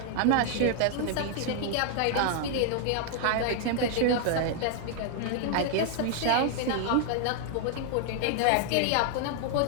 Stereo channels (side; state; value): both; different; correlation 0.00